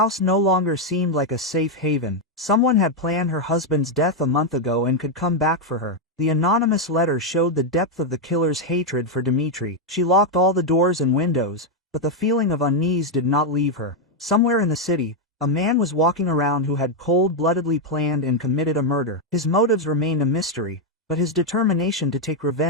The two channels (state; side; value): normal; both; correlation 0.01